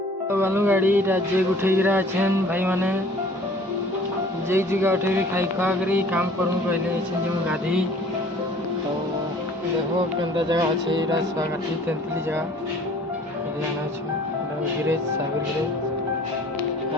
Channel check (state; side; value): normal; both; correlation 0.51